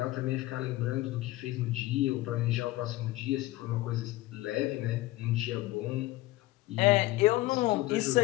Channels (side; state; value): right; quieter; 17.9 dB